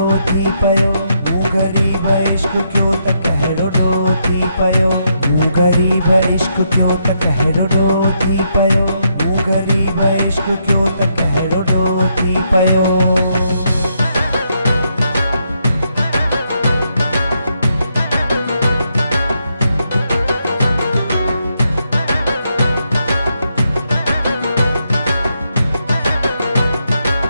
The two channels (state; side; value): inverted; both; correlation -0.78